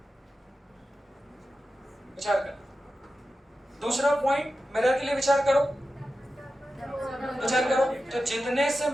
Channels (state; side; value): normal; both; correlation 0.92